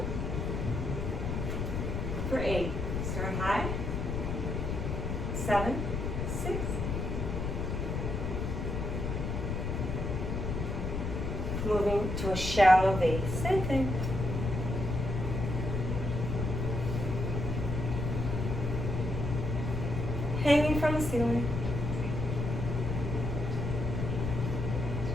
For 8, start high. 7, 6. Moving to a shallow V, same thing. Hanging from the ceiling.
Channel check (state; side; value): noise; left; rumble, 2 dB below the sound